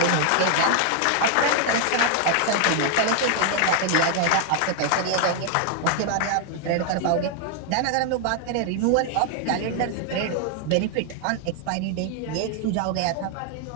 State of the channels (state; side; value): different; both; correlation 0.00